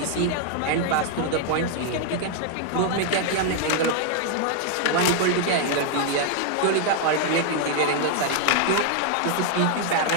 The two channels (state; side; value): different; both; correlation 0.00